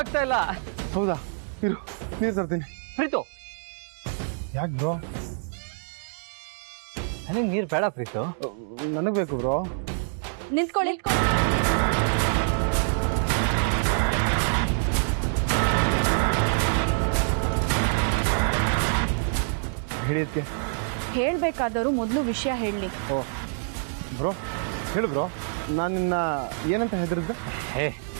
ಇಲ್ಲ. ಹೌದಾ? ಇರು, ನೀರು ತರ್ತೀನಿ. ಪ್ರೀತು, ಯಾಕೆ ಬ್ರೋ? ನನಗೆ ನೀರು ಬೇಡ ಪ್ರೀತು. ನನಗ್ ಬೇಕು ಬ್ರೋ. ನಿಂತ್ಕೊಳ್ಳಿ. ಹೇಳಿ ಅದಕ್ಕೆ. ಹೇಳ್ಬೇಕಾದವರು ಮೊದಲು ವಿಷಯ ಹೇಳಿ. ಓ ಬ್ರೋ, ಹೇಳು ಬ್ರೋ. ನಾನು ನಿನ್ನ ಏನಂತ ಹೆದರಿದ್ದೆ? ಹೇ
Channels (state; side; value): silent; left; digital silence